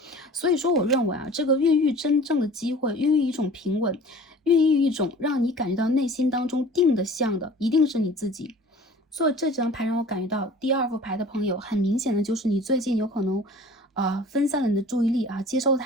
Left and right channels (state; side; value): normal; both; correlation 0.44